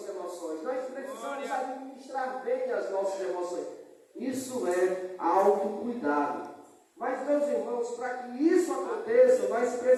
emoções, nós precisamos administrar bem as nossas emoções. Isso é autocuidado. Mas, meus irmãos, para que isso aconteça, nós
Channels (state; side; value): identical; both; correlation 1.00